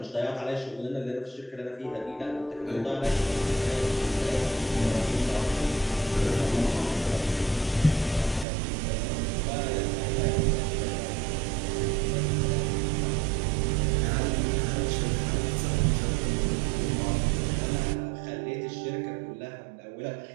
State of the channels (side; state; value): left; drops out; at 8.5 s